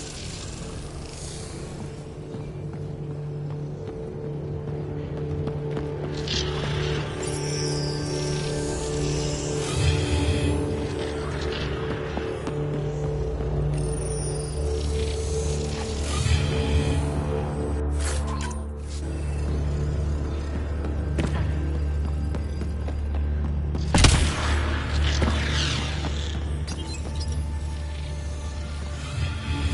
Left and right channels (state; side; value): identical; both; correlation 1.00